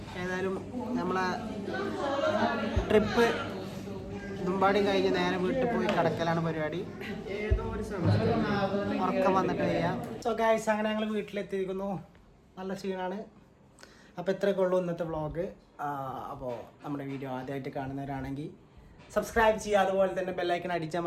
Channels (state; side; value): identical; both; correlation 1.00